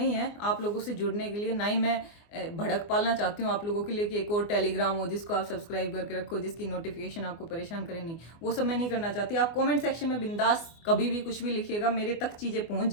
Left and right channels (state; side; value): late; right; 24 ms